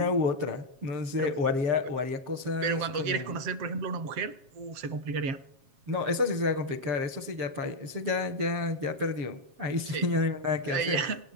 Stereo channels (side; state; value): left; late; 7.4 ms